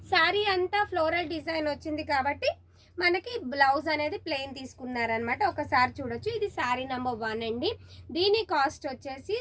శారీ అంతా ఫ్లోరల్ డిజైన్ వచ్చింది కాబట్టి మనకి బ్లౌజ్ అనేది ప్లెయిన్ తీసుకున్నారనమాట. ఒకసారి చూడొచ్చు. ఇది శారీ నెంబర్ 1 అండి. దీని కాస్ట్ వచ్చేసి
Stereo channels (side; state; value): both; identical; correlation 1.00